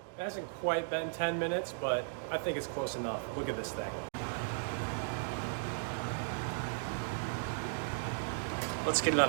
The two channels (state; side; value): silent; left; digital silence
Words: It hasn't quite been 10 minutes, but I think it's close enough. Look at this thing. Let's get it on